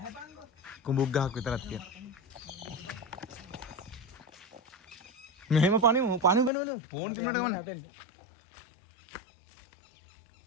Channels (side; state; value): right; drops out; at 6.5 s